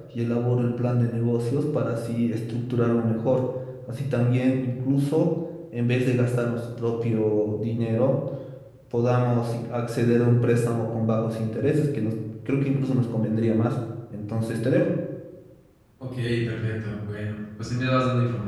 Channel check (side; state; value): both; identical; correlation 1.00